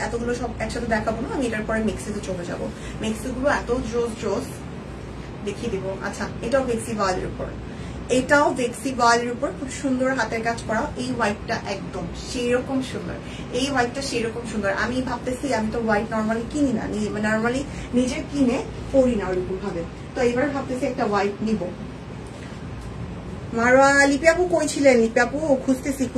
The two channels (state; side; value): identical; both; correlation 1.00